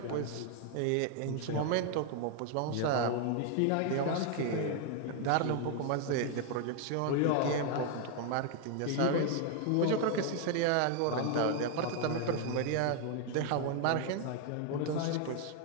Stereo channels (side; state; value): both; different; correlation 0.01